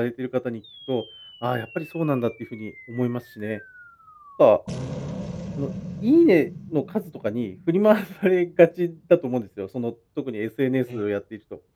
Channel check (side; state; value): both; identical; correlation 1.00